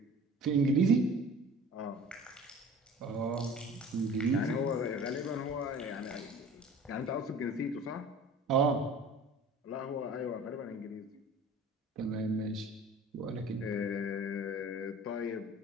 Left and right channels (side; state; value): both; normal; correlation 0.43